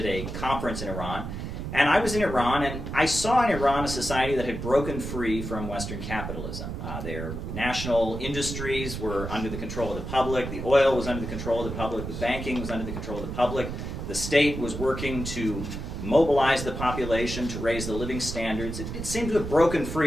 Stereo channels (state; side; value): noise; right; rumble, 6 dB below the sound